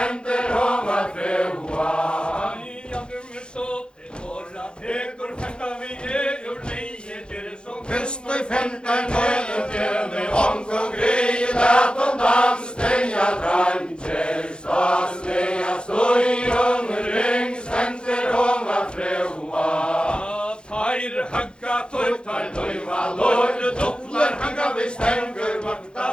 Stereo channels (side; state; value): right; late; 0.052 ms